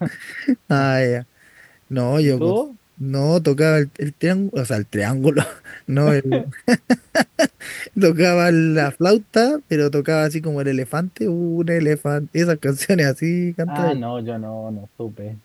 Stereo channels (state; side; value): identical; both; correlation 1.00